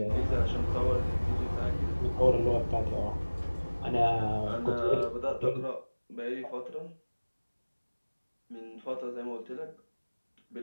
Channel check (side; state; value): both; inverted; correlation -1.00